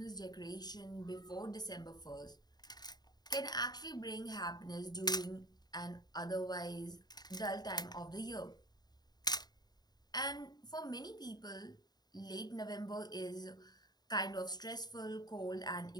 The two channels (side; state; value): right; late; 0.20 ms